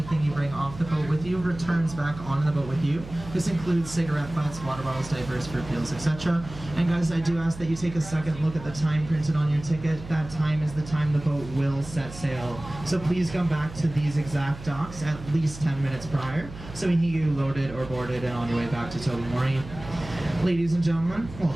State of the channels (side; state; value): right; noise; hum, 14 dB below the sound